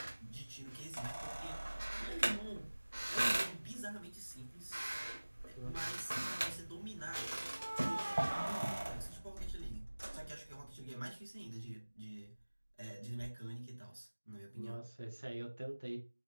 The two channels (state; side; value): inverted; both; correlation -1.00